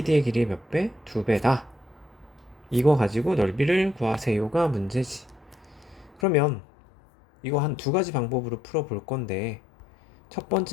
길이의 몇 배? 2배다. 이거 가지고 넓이를 구하세요가 문제지. 그러면 이거 한 두 가지 방법으로 풀어볼 건데, 첫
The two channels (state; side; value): drops out; right; at 6.2 s